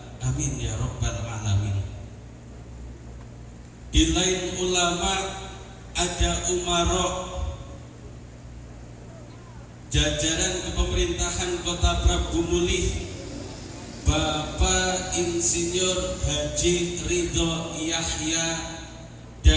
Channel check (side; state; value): both; identical; correlation 1.00